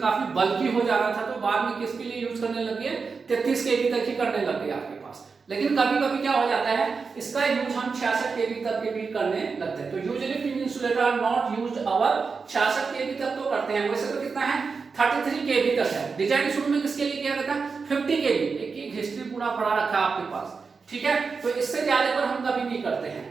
काफी बल्कि हो जा रहा था, तो बाद में किसके लिए यूज करने लगे, 33 केवी तक ही करने लग गए आपके पास। लेकिन कभी कभी क्या हो जाता है, इसका यूज हम 66 केवी तक के भी करने लगते हैं, तो usually pin insulator are not used over 66 KV तक तो करते हैं, वैसे तो कितना है 33 केवी तक है, डिजाइन शुरू में किसके लिए किया गया था 50 केवी, एक हिस्ट्री पूरा पढ़ा रखा है आपके पास, ठीक है। तो इससे ज्यादा पर हम कभी नहीं करते हैं,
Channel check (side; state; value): left; quieter; 4.9 dB